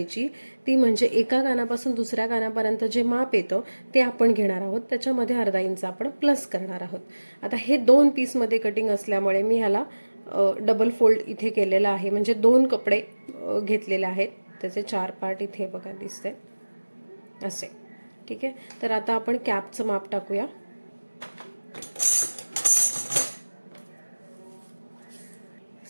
ती म्हणजे एका कानापासून दुसऱ्या कानापर्यंत जे माप येतं ते आपण घेणार आहोत, त्याच्यामध्ये अर्धा इंच आपण प्लस करणार आहोत। आता हे 2 पीसमध्ये कटिंग असल्यामुळे मी ह्याला डबल फोल्ड इथे केलेला आहे, म्हणजे 2 कपडे घेतलेले आहेत, त्याचे 4 पार्ट इथे बघा दिसते असे। ठीक आहे, तर आता आपण कॅपचं माप टाकूया।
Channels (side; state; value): both; inverted; correlation -1.00